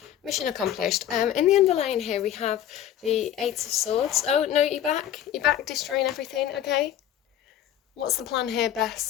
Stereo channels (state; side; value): quieter; right; 11.0 dB